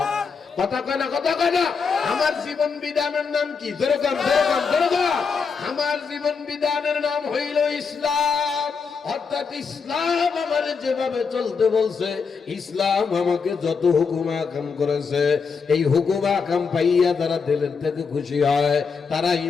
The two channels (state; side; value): quieter; right; 5.4 dB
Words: কথা কয় না, কথা কয় না? আমার জীবন বিধানের নাম কি? যেরকম যেরকম যেরকম আমার জীবন বিধানের নাম হইল ইসলাম। অর্থাৎ ইসলাম আমার যেভাবে চলতে বলছে, ইসলাম আমাকে যত হুকুম আকাম করেছে, এই হুকুম আকাম পাইয়া তারা দিলের থেকে খুশি হয়, তারা